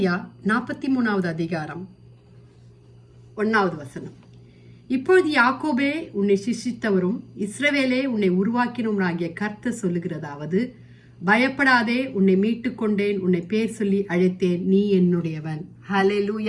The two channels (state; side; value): identical; both; correlation 1.00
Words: 43வது அதிகாரம் 1வது வசனம். இப்பொழுது யாக்கோபே உன்னை சிருஷ்டித்தவரும் இஸ்ரவேலே உன்னை உருவாக்கினவராகிய கர்த்தர் சொல்லுகிறதாவது, பயப்படாதே, உன்னை மீட்டுக் கொண்டேன், உன்னை பேர் சொல்லி அழைத்தேன், நீ என்னுடையவன்.